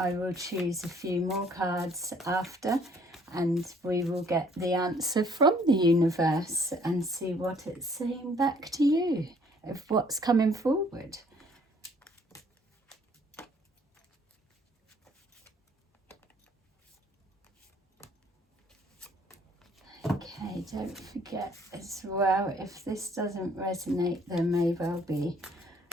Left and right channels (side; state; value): both; normal; correlation 0.61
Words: will choose a few more cards after and we will get the answer from the universe and see what it's saying back to you of what's coming forward. Okay, don't forget as well, if this doesn't resonate, there may well be